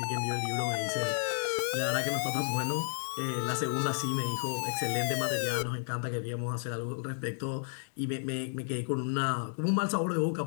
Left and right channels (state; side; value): silent; right; digital silence